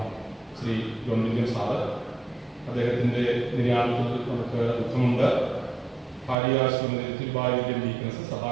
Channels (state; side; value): drops out; left; at 6.4 s